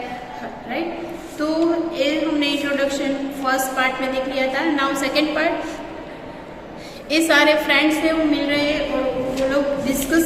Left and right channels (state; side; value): identical; both; correlation 1.00